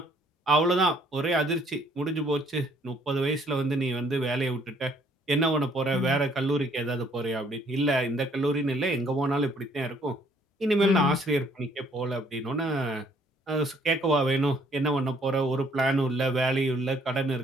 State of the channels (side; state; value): both; normal; correlation 0.63